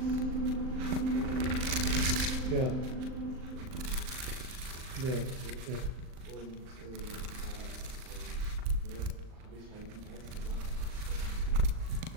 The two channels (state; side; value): late; left; 39 ms